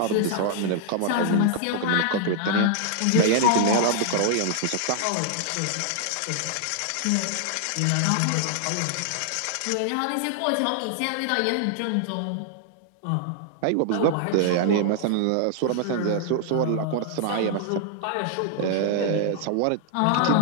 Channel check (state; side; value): different; both; correlation -0.01